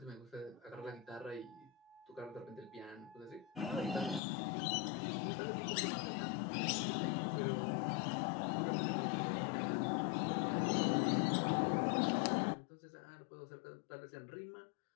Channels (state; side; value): drops out; right; at 4.2 s